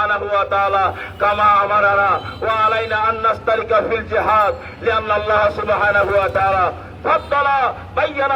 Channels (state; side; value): identical; both; correlation 1.00